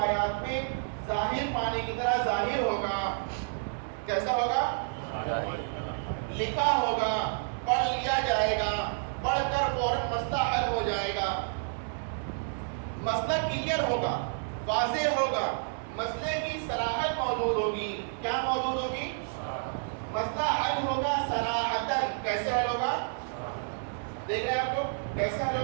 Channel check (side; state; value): left; silent; 58 dB below the other